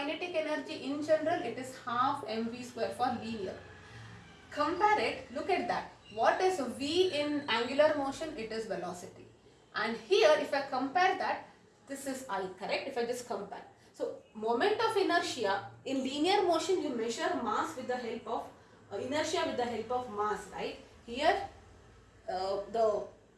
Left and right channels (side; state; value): both; identical; correlation 1.00